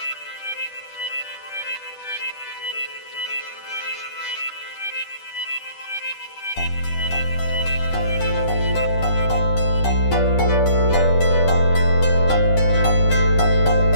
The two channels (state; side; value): late; right; 10 ms